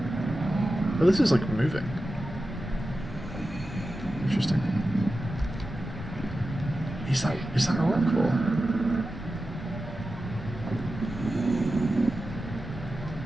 But this is like moving. Interesting. Is that a rock ball?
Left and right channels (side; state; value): both; normal; correlation 0.92